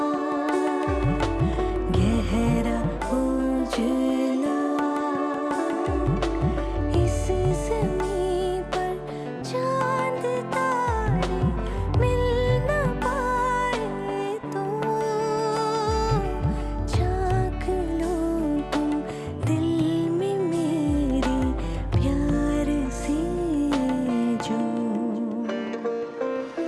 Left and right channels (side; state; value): both; identical; correlation 1.00